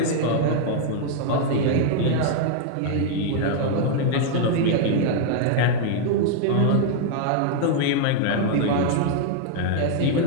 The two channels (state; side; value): different; both; correlation 0.00